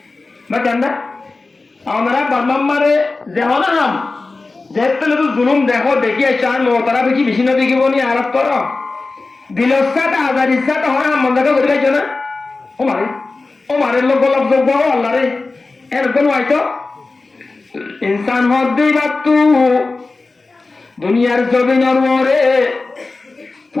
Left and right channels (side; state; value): right; quieter; 3.6 dB